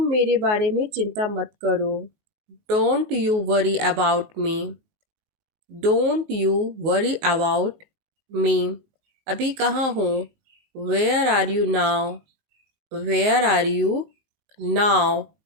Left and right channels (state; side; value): late; left; 19 ms